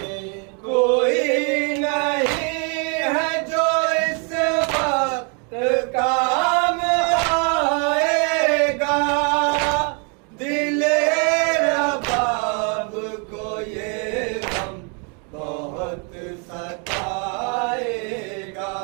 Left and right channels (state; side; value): quieter; left; 36.8 dB